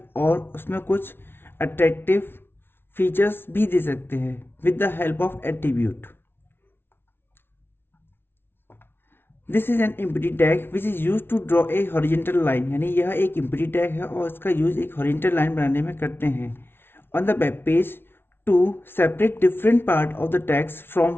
और उसमें कुछ अट्रैक्टिव फीचर्स भी दे सकते हैं with the help of attribute. This is an empty tag which is use to draw a horizontal line, यानी यह एक एम्प्टी टैग है और इसका यूज एक हॉरिजॉन्टल लाइन बनाने में करते हैं on the web page to separate different part of the tags from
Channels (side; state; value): right; late; 0.11 ms